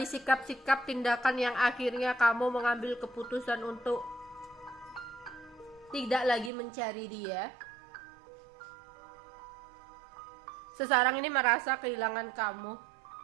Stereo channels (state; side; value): drops out; left; at 6.5 s